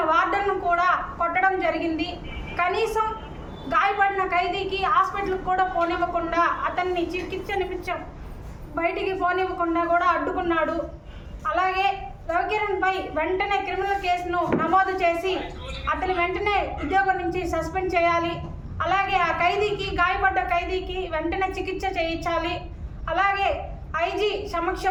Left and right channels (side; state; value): both; identical; correlation 1.00